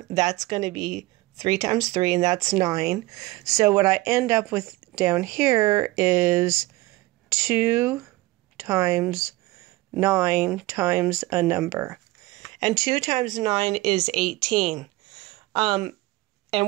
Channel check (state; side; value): quieter; left; 19.8 dB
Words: that's going to be 3 times 3, and that's 9. So what I end up with down here is 2 times 9 times a number. And 2 times 9 is 18.